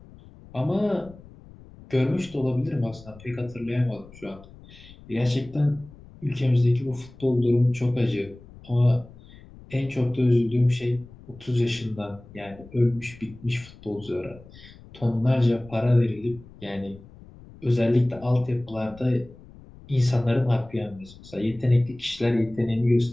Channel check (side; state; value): left; noise; rumble, 21 dB below the sound